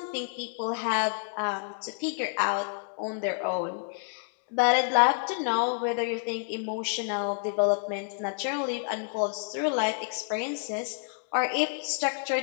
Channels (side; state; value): right; silent; 59 dB below the other